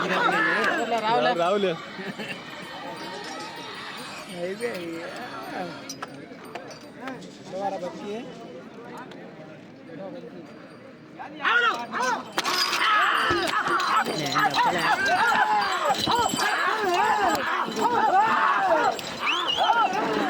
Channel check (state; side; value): identical; both; correlation 1.00